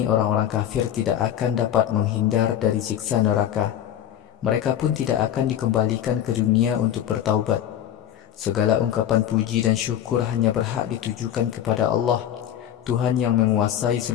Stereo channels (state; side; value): quieter; right; 10.8 dB